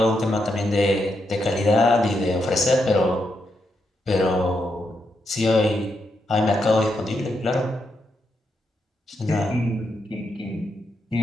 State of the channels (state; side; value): normal; both; correlation 0.82